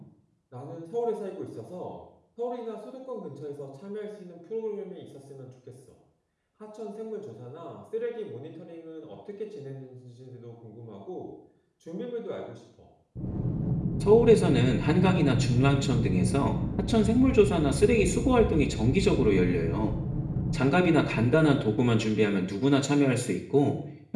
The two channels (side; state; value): both; identical; correlation 1.00